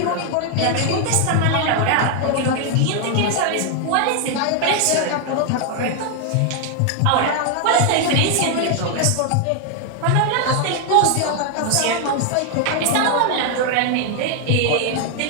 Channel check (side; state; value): both; different; correlation 0.00